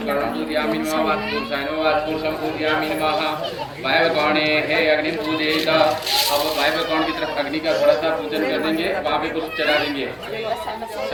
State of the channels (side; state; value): both; identical; correlation 1.00